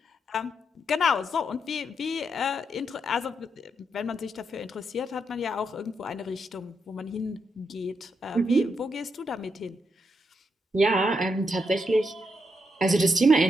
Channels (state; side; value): normal; both; correlation 0.81